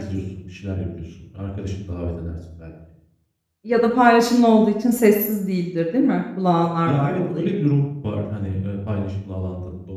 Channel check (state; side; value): identical; both; correlation 1.00